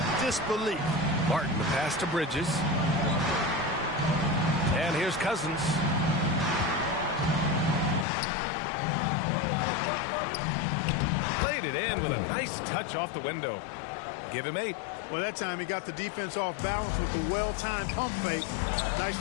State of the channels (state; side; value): drops out; right; at 8.1 s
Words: disbelief. Martin, the pass to Bridges. And here's Cousins. Played it in with a nice touch off the window. Give him 8. Well, that time he got the defense off balance with the well-timed pump fake.